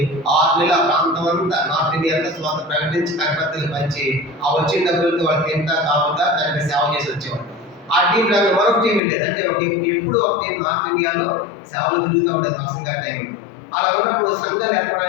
6 నెలలు ఆ ప్రాంతం అంతా నార్త్ ఇండియా అంతా స్వాత ప్రకటించి కరపత్తులు పంచి ఆ వచ్చిన డబ్బులతో వాళ్ళు తింటా తాగుతా దానికి సేవ చేసి వచ్చేవాళ్ళు. ఆ టీం లాగా మరొక టీం వెళ్ళేది. అంటే ఎప్పుడు ఒక టీం నార్త్ ఇండియాలో సేవలు తిరుగుతూ ఉండేది పక్సంగా టైం. అలా ఉన్నప్పుడు సంఘాలు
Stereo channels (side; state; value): right; drops out; at 9.0 s